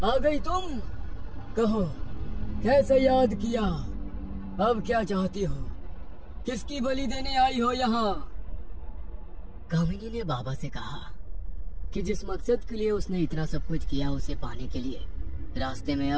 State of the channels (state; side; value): identical; both; correlation 1.00